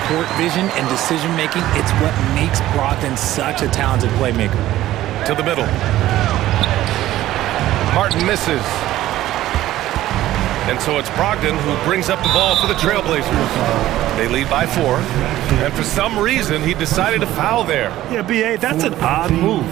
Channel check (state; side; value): quieter; left; 14.5 dB